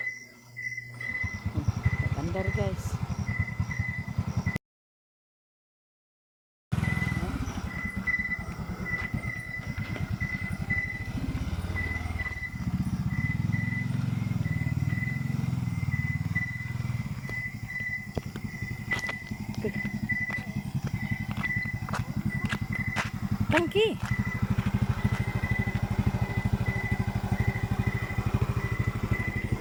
Andar guys. Tangki.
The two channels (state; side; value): identical; both; correlation 1.00